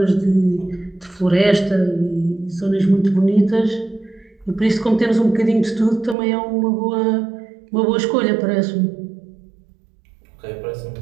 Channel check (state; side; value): drops out; left; at 6.2 s